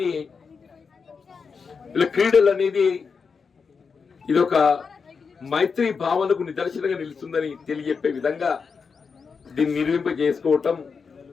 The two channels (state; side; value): quieter; right; 5.5 dB